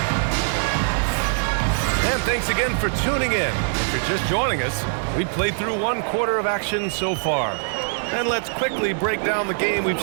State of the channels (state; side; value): silent; left; digital silence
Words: And thanks again for tuning in. If you're just joining us, we played through 1 quarter of action so far. And let's quickly break down the game we've